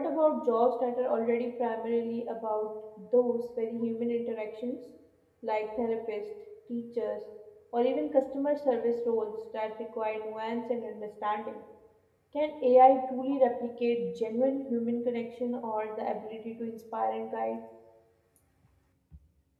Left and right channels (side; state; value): both; identical; correlation 1.00